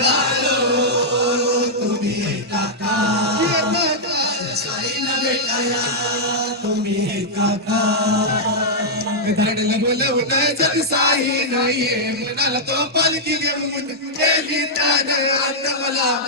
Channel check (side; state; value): both; normal; correlation -0.08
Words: तुम्ही येता का? माझ्या साईला भेटाया तुम्ही येता का? धाडला बोलवलं जग साई नाहीये मनाला तो पालखी घेऊन गेली त्याने आता मला